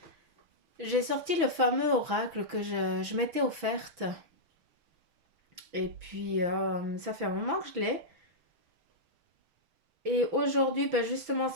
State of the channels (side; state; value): left; late; 6.4 ms